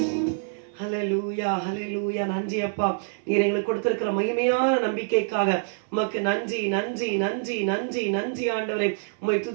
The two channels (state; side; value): silent; left; 61 dB below the other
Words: ஹல்லேலூயா, ஹல்லேலூயா. நன்றி அப்பா, நீர் எங்களுக்கு கொடுத்திருக்கிற மகிமையான நம்பிக்கைக்காக உமக்கு நன்றி, நன்றி, நன்றி, நன்றி, நன்றி ஆண்டவரே. உம்மை